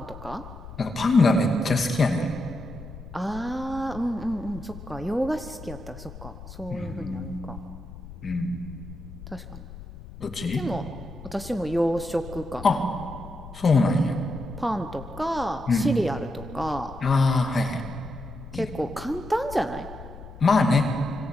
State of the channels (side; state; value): left; noise; rumble, 14 dB below the sound